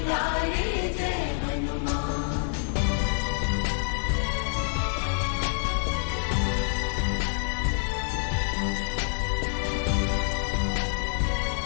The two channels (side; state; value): right; silent; digital silence